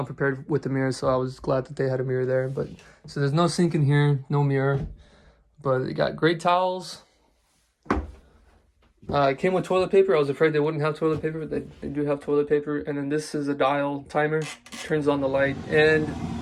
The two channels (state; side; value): identical; both; correlation 1.00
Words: prepared with the mirror, so I was glad that they had a mirror there. But so there's no sink in here, no mirror, but it got great towels. It came with toilet paper. I was afraid they wouldn't have toilet paper, but they do have toilet paper. And then this is a dial timer, turns on the light, and